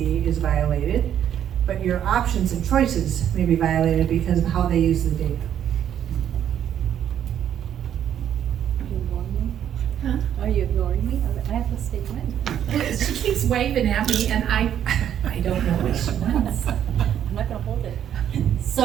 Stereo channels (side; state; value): left; quieter; 9.9 dB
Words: is violated, but your options and choices may be violated because of how they use the data. Huh? Are you ignoring me? I have a statement. She keeps waving at me and I don't know what she wants. I'm not gonna hold it.